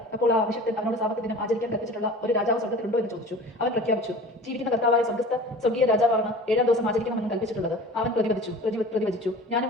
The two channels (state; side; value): normal; both; correlation 0.40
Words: അപ്പോൾ ആ അഭിഷക്തൻ അവനോട് സാബത്ത് ദിനം ആചരിക്കാൻ കൽപ്പിച്ചിട്ടുള്ള ഒരു രാജാവ് സ്വർഗ്ഗത്തിലുണ്ടോ എന്ന് ചോദിച്ചു. അവൻ പ്രഖ്യാപിച്ചു, ജീവിക്കുന്ന കർത്താവായ സ്വർഗീയ രാജാവാണ് 7-ാം ദിവസം ആചരിക്കണമെന്ന് കൽപ്പിച്ചിട്ടുള്ളത്. അവൻ പ്രതിവചിച്ചു, ഞാനും